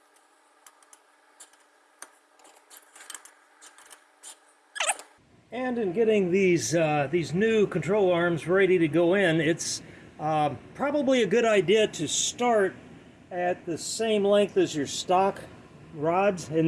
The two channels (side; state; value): both; identical; correlation 1.00